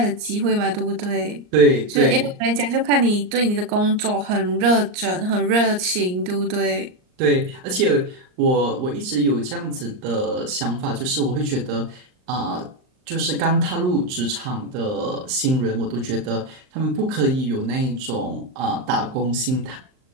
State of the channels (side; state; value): left; late; 39 ms